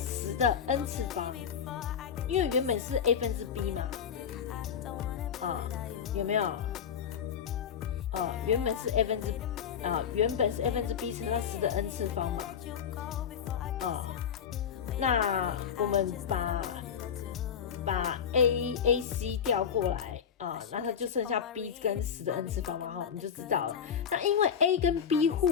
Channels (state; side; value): quieter; right; 7.7 dB